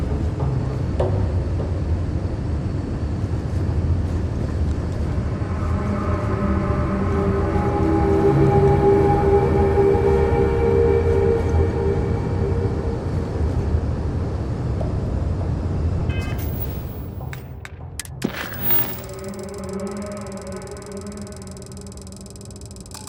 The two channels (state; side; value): identical; both; correlation 1.00